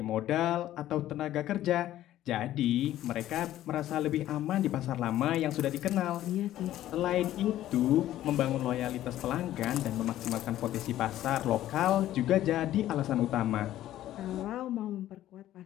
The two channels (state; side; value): quieter; right; 13.4 dB